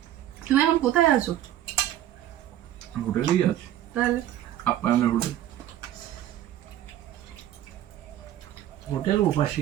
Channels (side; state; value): left; quieter; 12.3 dB